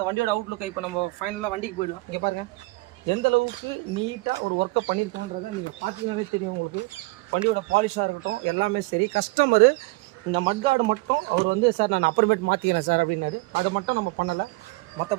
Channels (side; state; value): left; quieter; 23.5 dB